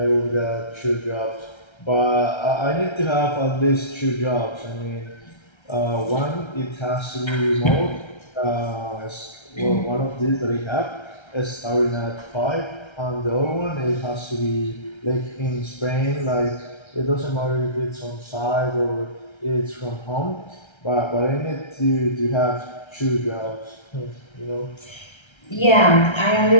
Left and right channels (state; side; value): late; right; 1.3 ms